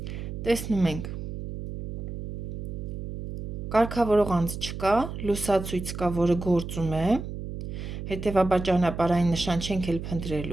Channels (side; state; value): right; noise; hum, 7 dB below the sound